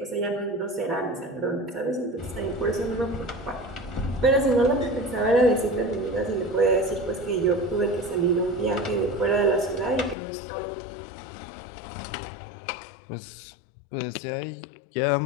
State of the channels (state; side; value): drops out; right; at 10.2 s